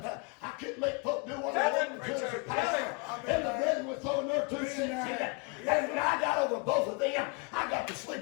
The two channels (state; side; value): quieter; right; 32.1 dB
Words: I couldn't make folk do what I wanted to as a pastor. And the brethren were throwing their 2 cents in it. And when I got over both of them, I got to